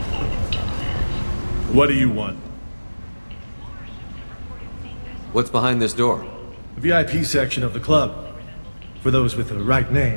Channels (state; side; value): inverted; both; correlation -1.00